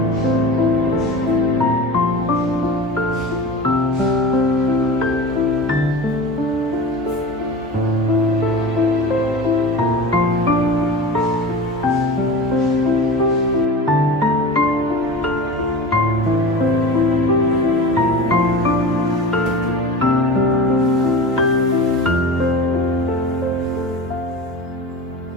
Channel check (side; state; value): both; normal; correlation 0.32